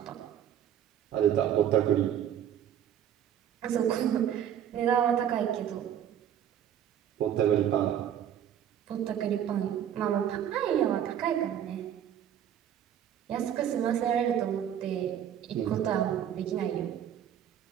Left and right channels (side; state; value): left; quieter; 9.9 dB